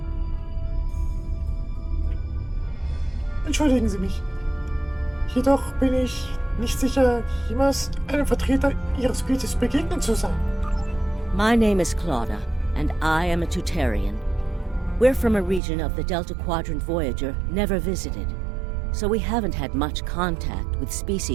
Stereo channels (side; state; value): left; drops out; at 15.6 s